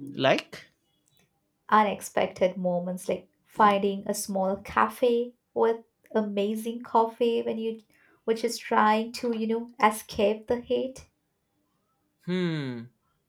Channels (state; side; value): identical; both; correlation 1.00